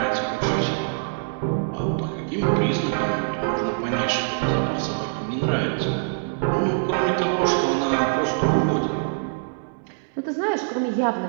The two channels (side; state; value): left; silent; 63 dB below the other